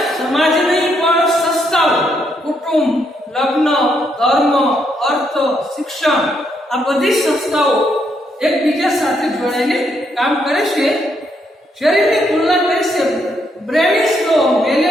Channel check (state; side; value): normal; both; correlation 0.76